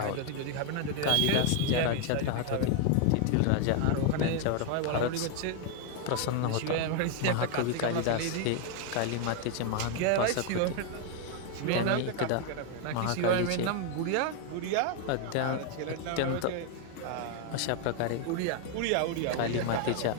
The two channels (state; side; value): different; both; correlation 0.01